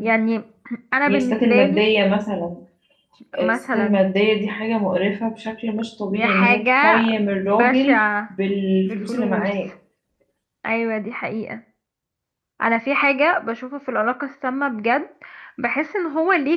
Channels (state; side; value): identical; both; correlation 1.00